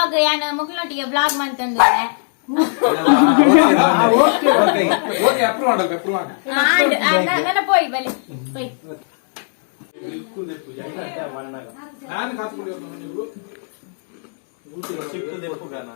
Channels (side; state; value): right; silent; 65 dB below the other